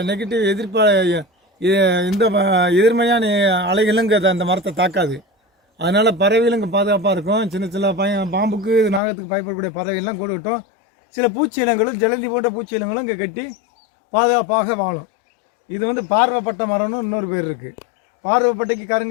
நெகட்டிவ் இந்த எதிர்மையான அலைகளும் இங்கே அந்த மரத்தை தாக்காது. அதனால் பறவைகளும் இங்கே பாதுகாப்பாக இருக்கும். சின்ன பாம்புக்கு, நாகத்துக்கு பயப்படக்கூடிய பறவைகள்லாம் கூடு கட்டும். சில பூச்சி இனங்களும் ஜலந்தி போன்ற பூச்சி இனங்களும் இங்கே கட்டி பாதுகாப்பாக வாழும். இது பார்வைப்பட்ட மரம்னு இன்னொரு பேர் இருக்குது. பார்வைப்பட்டைக்கு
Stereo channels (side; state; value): right; drops out; at 9.0 s